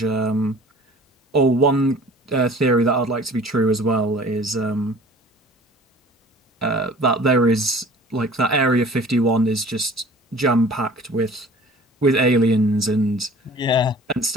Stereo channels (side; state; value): both; normal; correlation 0.47